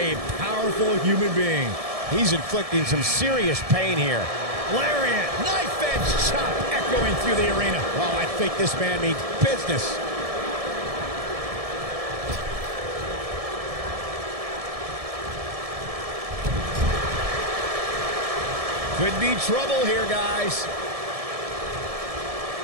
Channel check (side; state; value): left; late; 1.7 ms